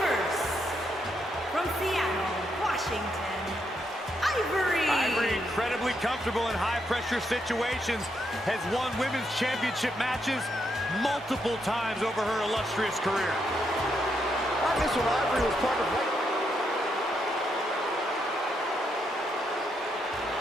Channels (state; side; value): normal; both; correlation 0.79